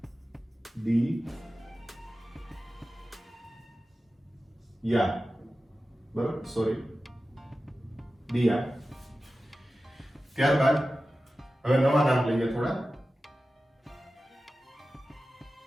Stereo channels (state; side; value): normal; both; correlation 0.94